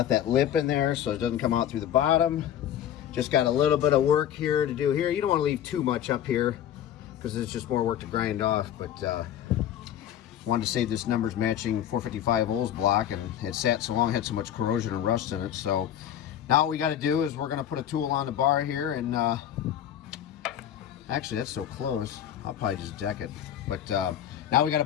that lip in there so it doesn't come out through the bottom. Just got a little bit of work here to do here. You don't want to leave too much up here because it's just more work to grind off, but wanted to save this numbers matching 455 Olds block, and it sat so long, had so much corrosion and rust in it. So now what we got to do is we're going to put a tool on the bar here, and actually that's so close. I'll probably just deck it. But now we got to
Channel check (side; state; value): right; quieter; 10.5 dB